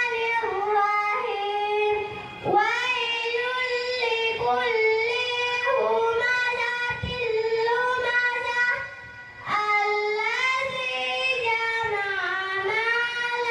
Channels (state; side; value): identical; both; correlation 1.00